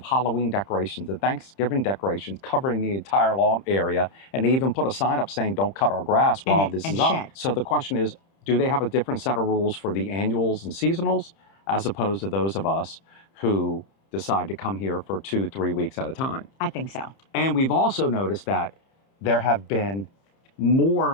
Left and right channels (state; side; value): late; right; 30 ms